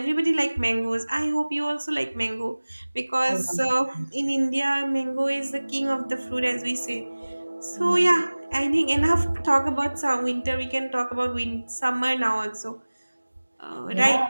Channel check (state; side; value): inverted; both; correlation -1.00